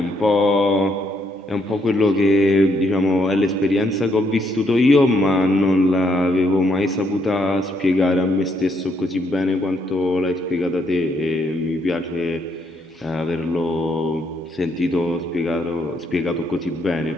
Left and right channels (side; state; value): both; normal; correlation 0.73